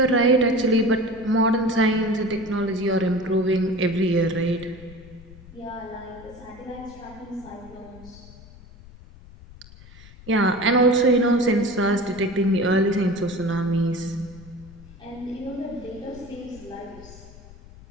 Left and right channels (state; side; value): noise; left; rumble, 20 dB below the sound